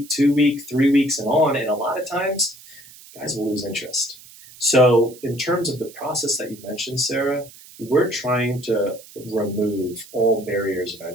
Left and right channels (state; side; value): noise; right; hiss, 21 dB below the sound